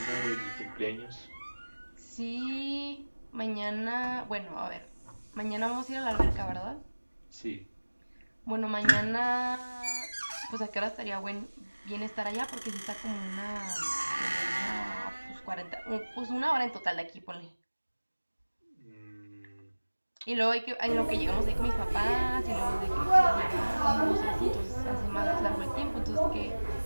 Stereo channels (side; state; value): both; inverted; correlation -1.00